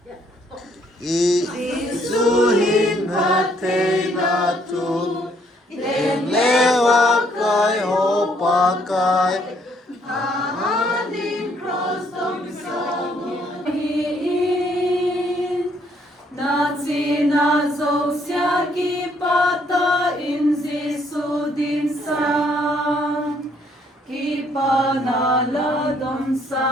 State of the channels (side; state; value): both; normal; correlation 0.67